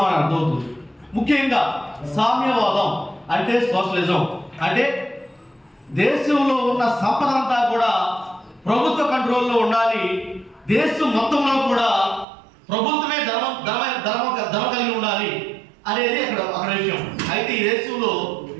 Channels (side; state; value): left; drops out; at 12.2 s